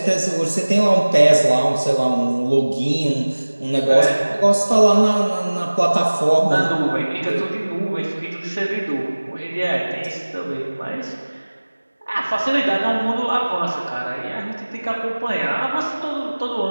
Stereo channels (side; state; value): both; inverted; correlation -1.00